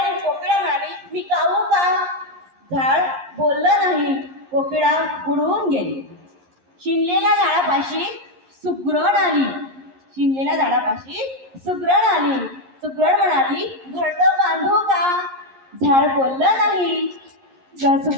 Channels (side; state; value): left; late; 11 ms